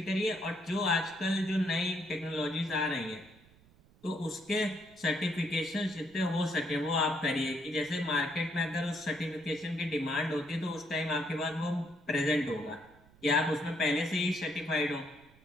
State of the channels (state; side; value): noise; right; rumble, 27 dB below the sound